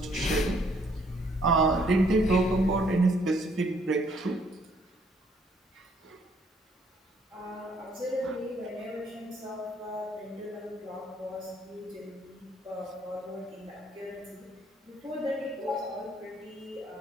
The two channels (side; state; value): both; normal; correlation 0.66